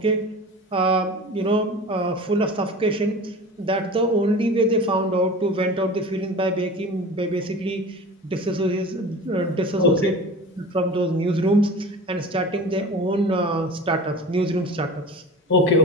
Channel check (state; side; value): normal; both; correlation 0.36